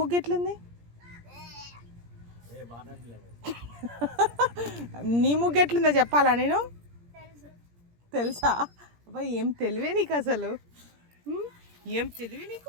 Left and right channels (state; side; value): late; left; 17 ms